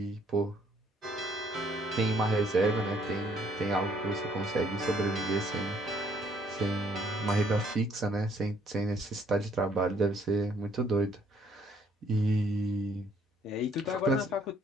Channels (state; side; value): normal; both; correlation 0.65